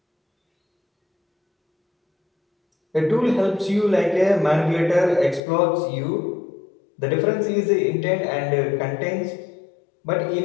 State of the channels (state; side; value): drops out; right; at 5.4 s